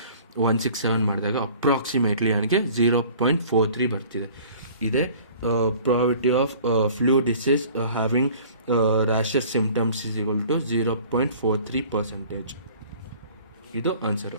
ಮಾಡಿದಾಗ ಅಪ್ರಾಕ್ಸಿಮೇಟ್ಲಿ ನನಗೆ 0.43 ಬರ್ತಿದೆ. ಇದೇ probability of flu disease having rashes symptoms is equal to 0.43%. ಇದು ಆನ್ಸರು.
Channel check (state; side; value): inverted; both; correlation -0.49